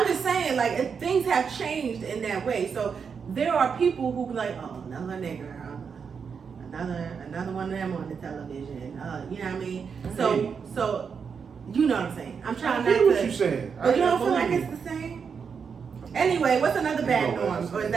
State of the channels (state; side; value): quieter; left; 6.2 dB